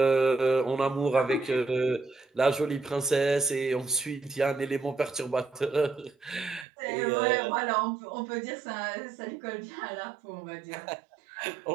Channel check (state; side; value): drops out; left; at 6.7 s